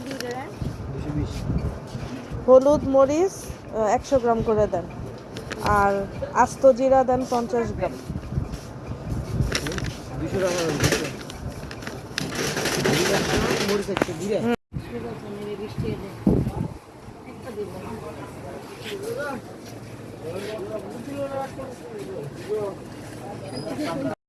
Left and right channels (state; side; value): identical; both; correlation 1.00